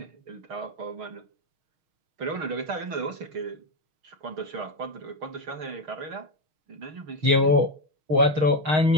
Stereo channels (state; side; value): late; left; 6.4 ms